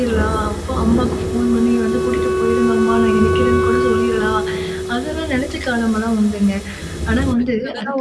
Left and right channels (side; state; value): both; identical; correlation 1.00